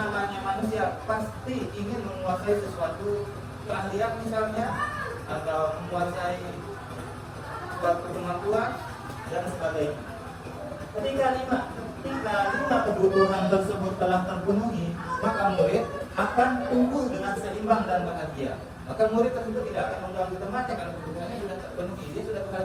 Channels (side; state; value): both; identical; correlation 1.00